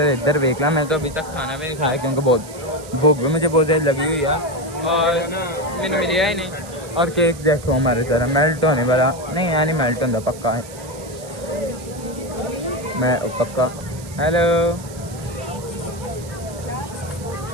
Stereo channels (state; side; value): noise; right; hiss, 17 dB below the sound